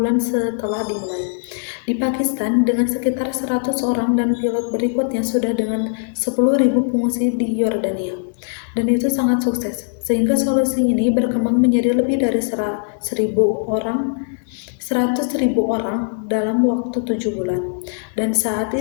setelah dimulai. Di Pakistan, dengan sekitar 100 orang dan pilot berikutnya sudah dengan 10.000 pengungsi di Yordania. Dan itu sangat sukses, sehingga solusi ini berkembang menjadi lebih dari 100.000 orang dalam waktu 7 bulan. Dan saat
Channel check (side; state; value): right; silent; digital silence